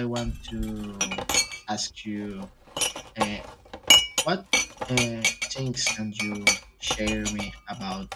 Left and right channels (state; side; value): identical; both; correlation 1.00